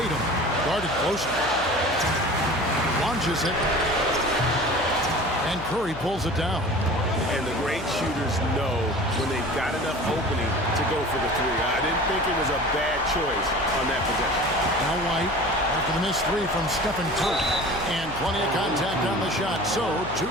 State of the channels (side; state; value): left; noise; hum, 13 dB below the sound